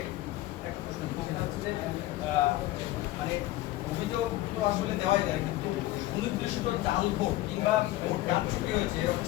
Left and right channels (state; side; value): quieter; right; 16.5 dB